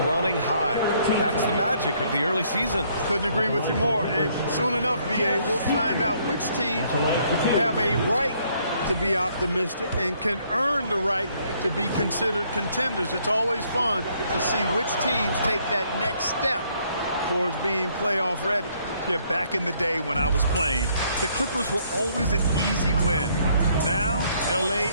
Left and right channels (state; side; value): inverted; both; correlation -0.67